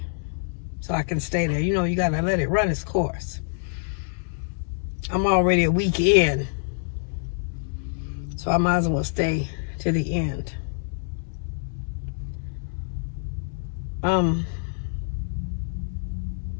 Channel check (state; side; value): silent; right; digital silence